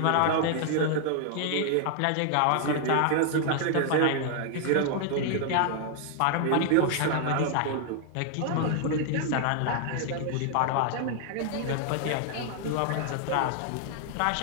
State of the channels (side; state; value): both; different; correlation 0.00